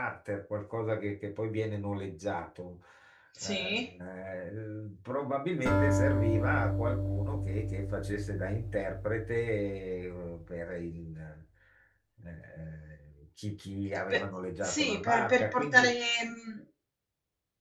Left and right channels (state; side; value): identical; both; correlation 1.00